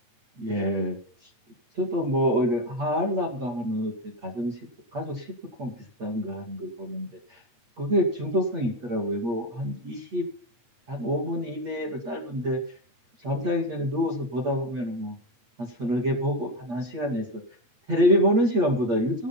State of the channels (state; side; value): late; left; 8.5 ms